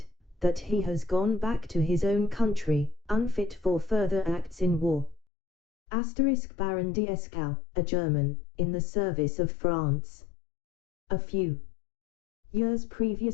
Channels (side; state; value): right; drops out; at 5.2 s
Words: that he has gone back to his own country, unfit for further acts in war. Baron Dieskau, a German, in the service of France. A few years